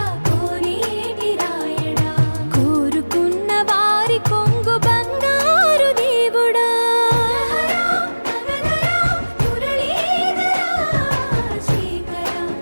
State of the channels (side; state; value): both; inverted; correlation -1.00